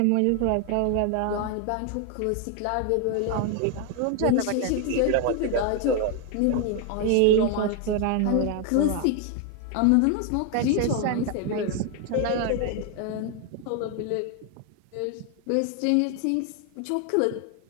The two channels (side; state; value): both; different; correlation 0.01